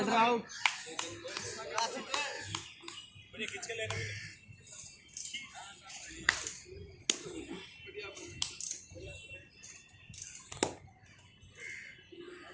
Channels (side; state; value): both; identical; correlation 1.00